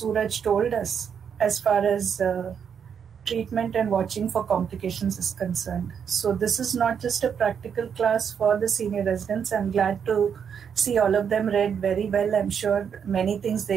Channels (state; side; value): quieter; left; 7.4 dB